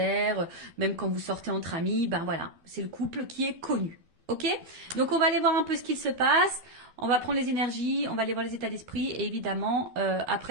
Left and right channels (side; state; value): left; late; 12 ms